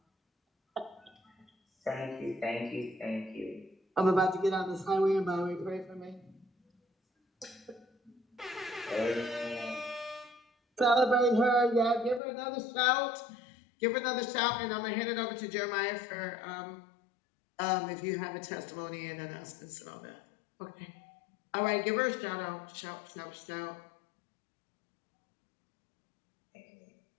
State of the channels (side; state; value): right; drops out; at 12.2 s